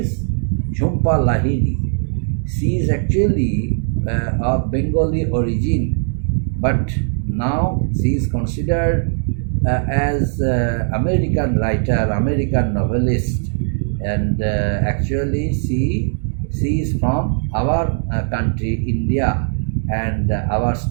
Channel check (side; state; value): left; silent; 67 dB below the other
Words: Jhumpa Lahiri. She is actually of Bengali origin, but now she is considered as American writer, American novelist, and actually she is from our country, India, and our